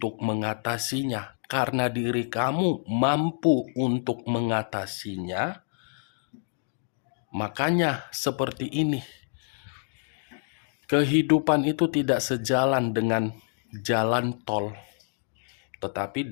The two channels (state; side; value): silent; right; digital silence